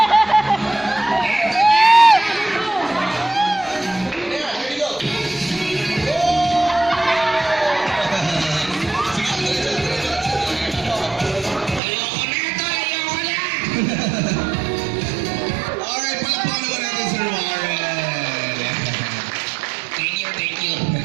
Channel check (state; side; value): drops out; left; at 11.8 s